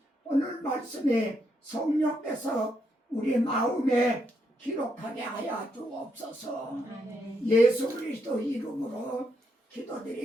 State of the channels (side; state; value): both; normal; correlation 0.78